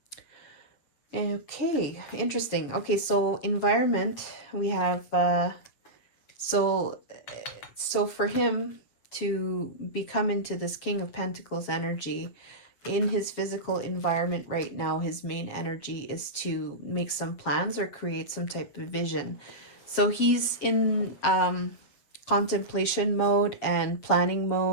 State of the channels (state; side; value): late; right; 7.4 ms